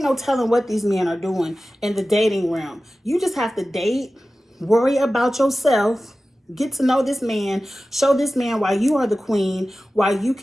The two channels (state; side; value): normal; both; correlation 0.95